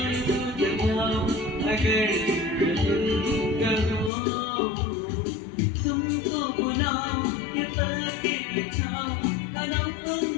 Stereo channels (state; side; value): drops out; right; at 4.1 s